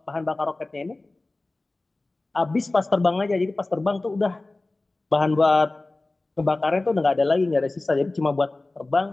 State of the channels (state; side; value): quieter; right; 3.0 dB